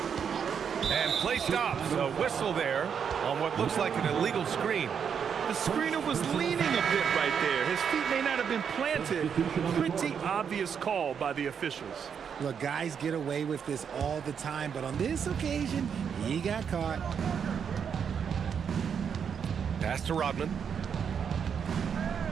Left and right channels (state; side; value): quieter; left; 7.3 dB